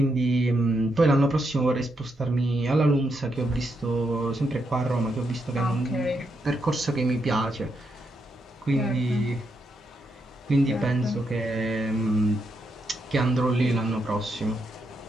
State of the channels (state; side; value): normal; both; correlation 0.81